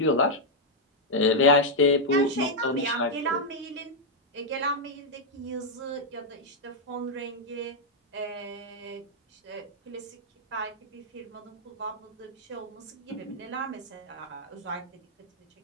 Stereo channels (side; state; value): both; normal; correlation -0.03